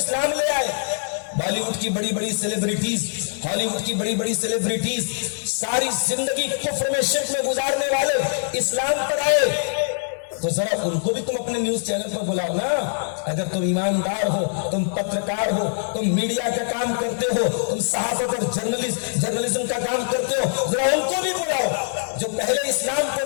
لے آئے. بالی ووڈ کی بڑی بڑی سیلیبریٹیز، ہالی ووڈ کی بڑی بڑی سیلیبریٹیز، ساری زندگی کفر میں شرک میں گزارنے والے اسلام پر آئے. تو ذرا ان کو بھی تم اپنے نیوز چینل پر بلاؤ نا. اگر تم ایماندار ہو، تم پترکار ہو، تم میڈیا کا کام کرتے ہو، تم صحافت اور جرنلزم کا کام کرتے ہو، ذرا ان کو بھی بلاؤ جو پہلے اسلام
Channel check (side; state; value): right; silent; 59 dB below the other